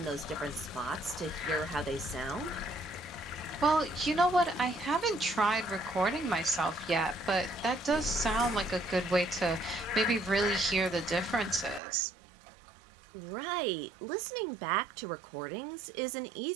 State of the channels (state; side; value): drops out; left; at 11.8 s